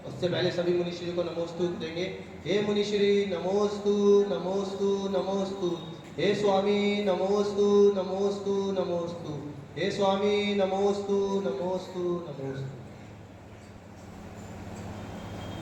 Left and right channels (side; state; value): both; identical; correlation 1.00